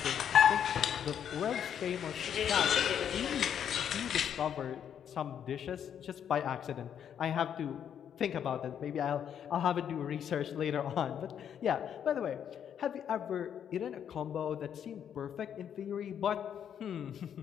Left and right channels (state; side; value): quieter; right; 8.8 dB